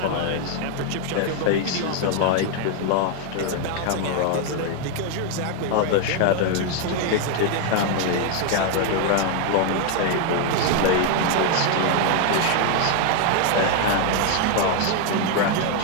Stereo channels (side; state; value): both; different; correlation 0.01